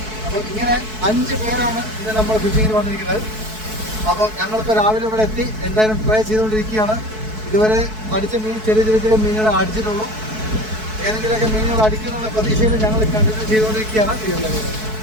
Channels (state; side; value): late; left; 4.6 ms